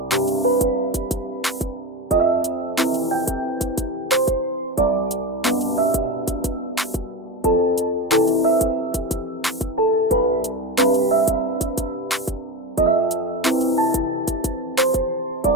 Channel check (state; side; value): normal; both; correlation 0.20